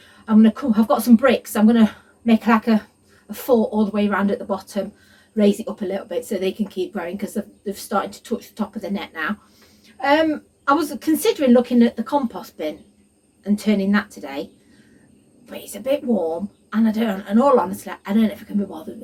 I'm going to come, I've got some bricks, so I'm going to make like a fort all the way around at the bottom, raise it up a little bit so they can keep growing, because they've started to touch the top of the net now. I was considering looking at the compost bin and turning that today, but it's a bit warm and in all honesty, I don't know if I can be bothered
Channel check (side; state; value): both; identical; correlation 1.00